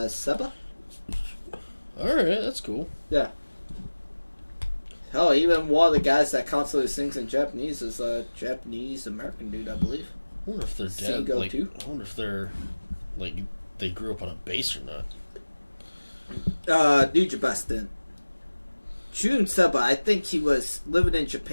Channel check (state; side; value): inverted; both; correlation -1.00